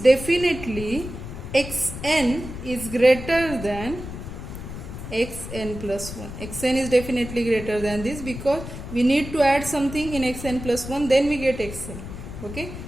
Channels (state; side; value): noise; left; rumble, 10 dB below the sound